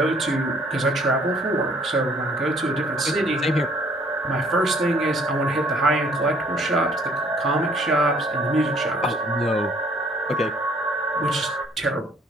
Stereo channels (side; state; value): both; normal; correlation 0.60